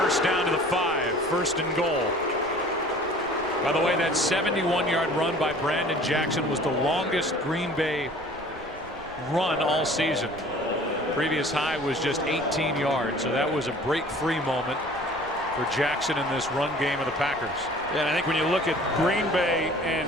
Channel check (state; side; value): noise; right; rumble, 21 dB below the sound